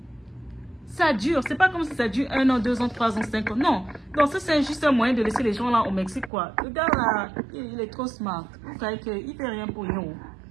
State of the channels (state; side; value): drops out; left; at 6.3 s